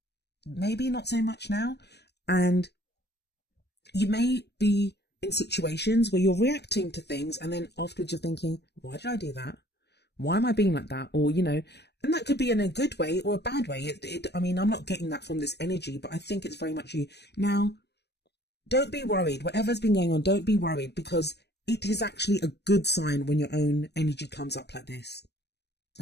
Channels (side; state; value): right; late; 0.49 ms